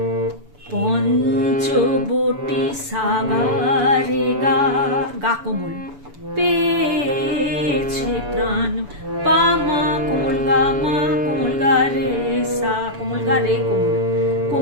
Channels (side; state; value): left; late; 7.0 ms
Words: পঞ্চবটি সাগারে গা, গা কোমল, পেয়েছে প্রাণ, পা মা কোমল গা মা, কোমল গা রে সা, কোমল গা রে কোমল,